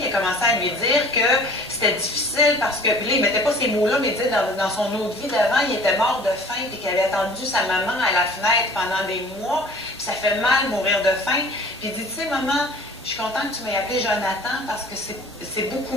a commencé à lui dire que c'était difficile parce que, puis là, il ne mettait pas ces mots-là, mais il disait dans son autre vie d'avant, il était mort de faim, puis qu'il avait attendu sa maman à la fenêtre pendant des mois, puis ça fait mal mourir de faim. Puis il dit, tu sais, maman, je suis contente que tu m'aies appelé Jonathan parce que c'est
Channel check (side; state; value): both; normal; correlation 0.47